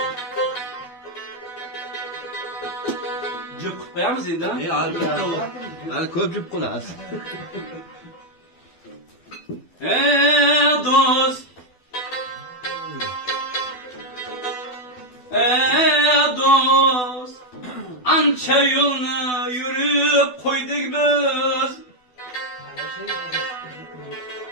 Cık koyamız yine. Al köpcük kulas. Dost. Dost. Ança yolunu yürüp koyduk biz.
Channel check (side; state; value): right; late; 12 ms